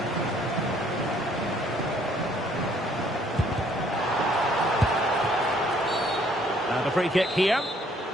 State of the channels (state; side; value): normal; both; correlation 0.63